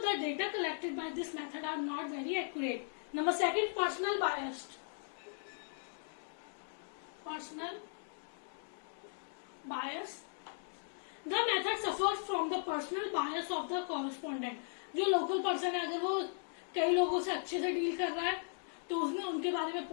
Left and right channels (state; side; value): silent; right; digital silence